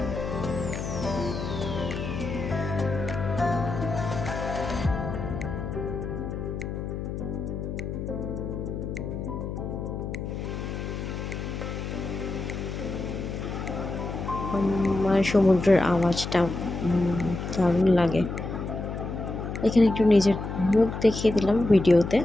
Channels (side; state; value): left; noise; hum, 5 dB below the sound